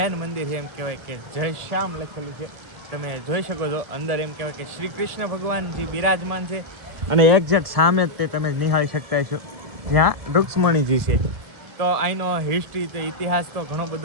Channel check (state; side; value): late; left; 1.4 ms